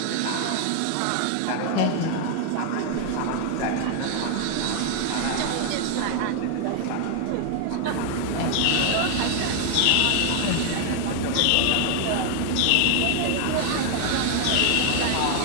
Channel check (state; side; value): different; both; correlation 0.00